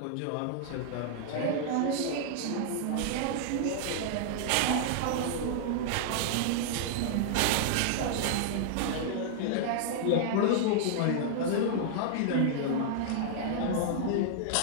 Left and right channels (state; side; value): different; both; correlation -0.01